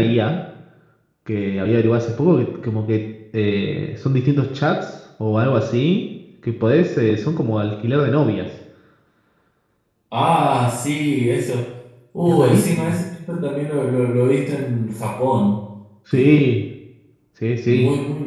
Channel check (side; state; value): both; identical; correlation 1.00